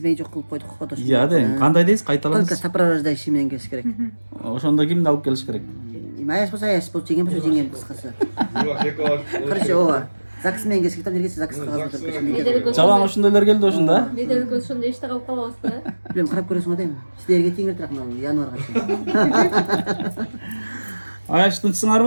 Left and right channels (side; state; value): both; inverted; correlation -1.00